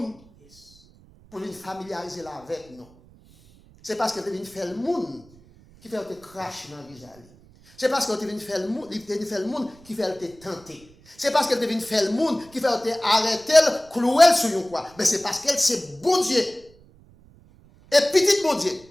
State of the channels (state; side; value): noise; right; rumble, 26 dB below the sound